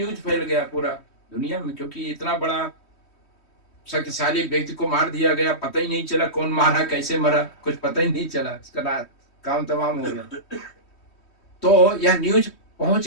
फैल गया पूरा दुनिया में, क्योंकि इतना बड़ा शक्तिशाली व्यक्ति को मार दिया गया, पता ही नहीं चला कौन मारा, कैसे मरा, कुछ पता ही नहीं चला, इसका काम तमाम हो गया। तो यह न्यूज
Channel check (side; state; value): right; late; 3.1 ms